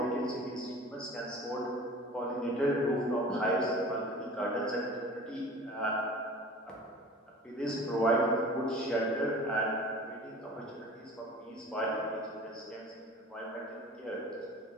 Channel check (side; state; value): both; normal; correlation 0.41